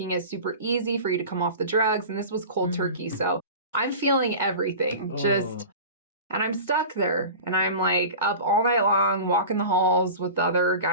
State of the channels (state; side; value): inverted; both; correlation -0.35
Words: it super easy for you to come off the drugs. And this was cold turkey. So I'm feeling everything and I'm stuck there and I'm like up all night long, walking the halls with the other